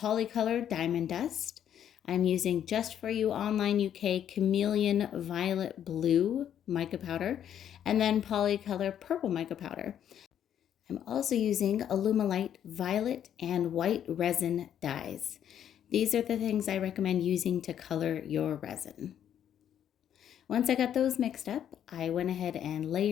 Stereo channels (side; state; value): right; quieter; 9.8 dB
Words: Diamond Dust. I'm using Just For You Online UK Chameleon Violet Blue mica powder and then Polycolor Purple mica powder. I'm also using Alumilite Violet and White Resin dyes. These are the things I recommend using to color your resin. Once I got those mixed up, I went ahead and